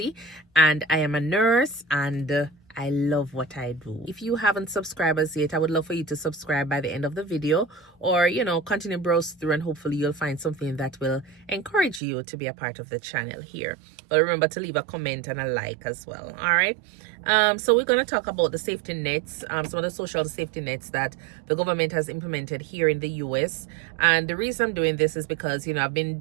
and I am a nurse, and I love what I do. If you haven't subscribed as yet, I would love for you to subscribe by the end of the video, or continue browse through, and hopefully you'll find something that will encourage you to be a part of the channel here. But remember to leave a comment and a like as well. All right. So we're going to talk about the safety nets, some of the social safety nets that the government has implemented here in the US. And the reason I'm doing this is because, I've been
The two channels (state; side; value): drops out; left; at 12.0 s